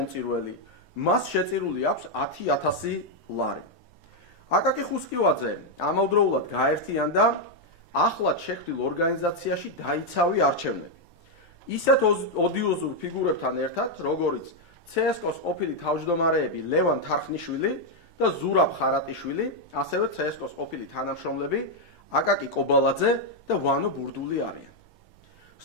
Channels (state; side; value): normal; both; correlation 0.01